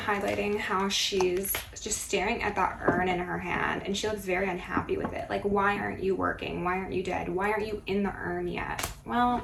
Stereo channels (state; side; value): identical; both; correlation 1.00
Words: how she's just staring at that urn in her hand, and she looks very unhappy with it. Like, why aren't you working? Why aren't you dead? Why aren't you in the urn yet? Well,